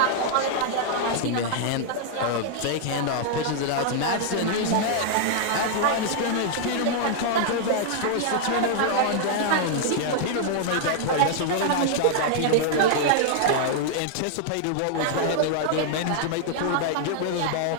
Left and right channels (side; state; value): both; different; correlation -0.01